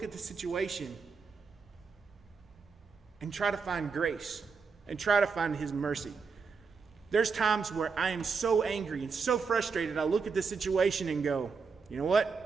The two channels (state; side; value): quieter; left; 5.2 dB